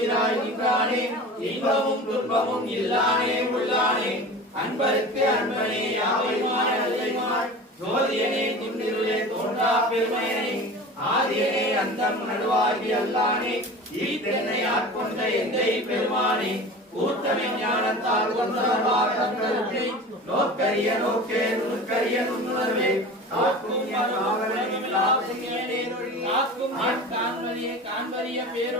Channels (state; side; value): normal; both; correlation 0.35